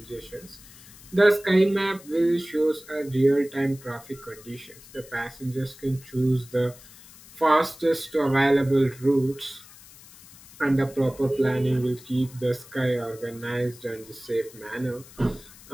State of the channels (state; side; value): noise; left; hiss, 21 dB below the sound